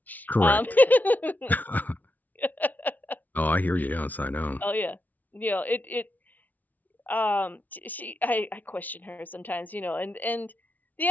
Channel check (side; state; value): right; late; 0.078 ms